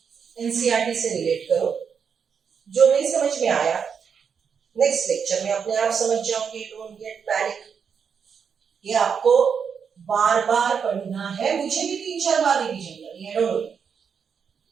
एनसीईआरटी से रिलेट करो। जो नहीं समझ में आया नेक्स्ट लेक्चर में अपने आप समझ जाओगे। Don't get panic. ये आपको बार बार पढ़ना है, मुझे भी 3-4 बार रिवीजन करनी है, don't worry.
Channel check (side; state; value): left; quieter; 6.7 dB